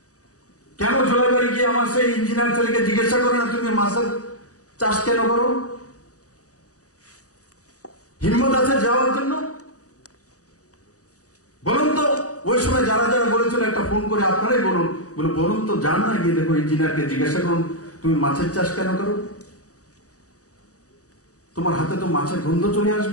কেন জলাইবাড়ি গিয়ে আমার সেই ইঞ্জিনিয়ার ছেলেকে জিজ্ঞাসা করে না তুমি মাছের চাষ কেন করো? হিম্মত আছে যাওয়ার জন্য? বলুন তো, ওই সময় যারা যারা বলেছিল একটা ফোন করে আপনারাই বলুন তো, যান না গিয়ে দেখো ইঞ্জিনিয়ারকে জিজ্ঞাসা করুন তুমি মাছের চাষ কেন করো? তোমার হাতে তো মাছের গন্ধ চলে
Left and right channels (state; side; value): late; right; 0.66 ms